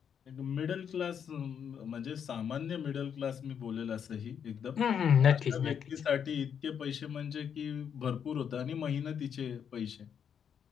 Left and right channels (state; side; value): quieter; right; 7.9 dB